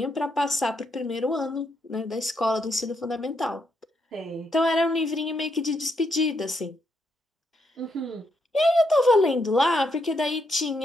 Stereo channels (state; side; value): normal; both; correlation 0.78